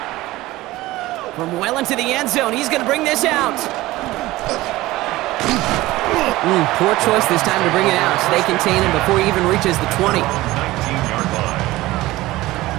From well into the end zone, he's going to bring this out. Poor choice this time to bring it out. So they contain him before he even reaches the 20. 19-yard line.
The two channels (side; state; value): left; quieter; 18.0 dB